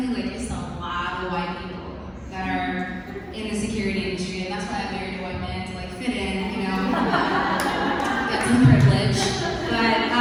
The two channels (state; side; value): identical; both; correlation 1.00